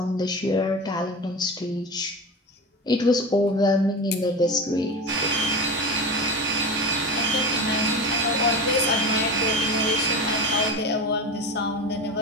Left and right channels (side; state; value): both; normal; correlation 0.27